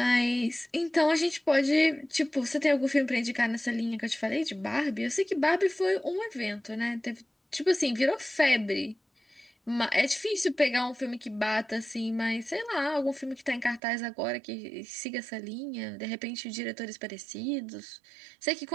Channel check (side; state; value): left; drops out; at 13.8 s